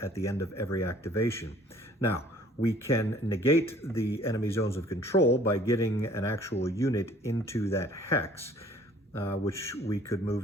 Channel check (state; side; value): normal; both; correlation 0.55